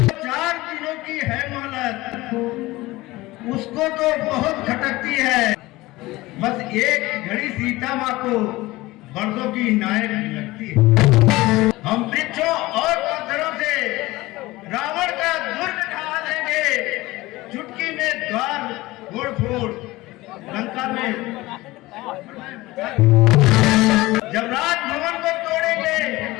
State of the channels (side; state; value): right; quieter; 19.5 dB